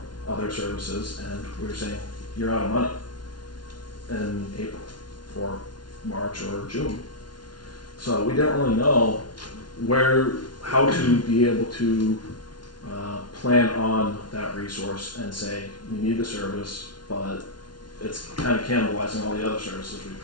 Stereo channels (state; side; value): late; right; 0.71 ms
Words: other services, and we were saying, you're out of money in April for March or June. So we didn't really know how to be able to plan on that resource and say, we need the service, but it's kind of cannibalizing all the other services we